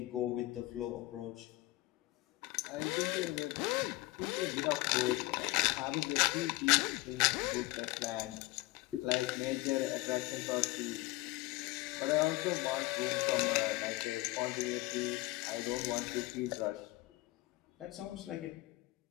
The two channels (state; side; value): quieter; right; 20.3 dB